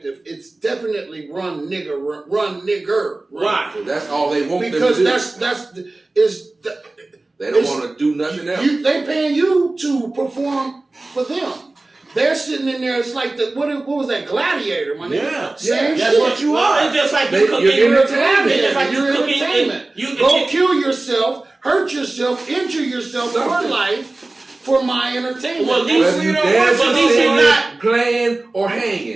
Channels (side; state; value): left; quieter; 3.0 dB